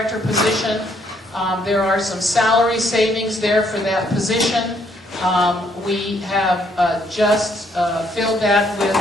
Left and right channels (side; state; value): both; normal; correlation 0.69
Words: position, there are some salary savings there for that position. We have just filled that with